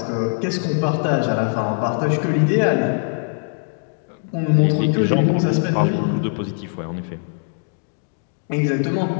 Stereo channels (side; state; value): right; silent; 61 dB below the other